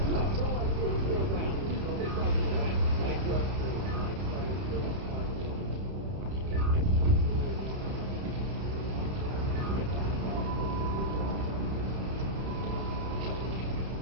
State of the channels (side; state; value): left; late; 31 ms